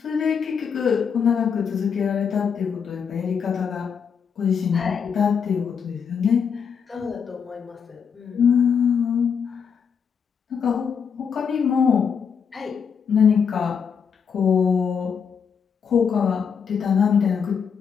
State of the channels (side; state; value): right; quieter; 6.7 dB